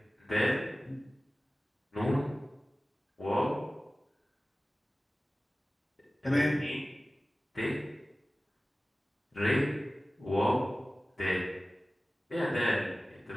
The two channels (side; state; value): both; normal; correlation 0.97